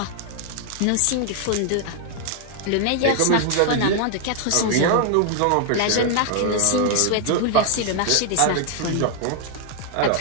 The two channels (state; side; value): different; both; correlation 0.00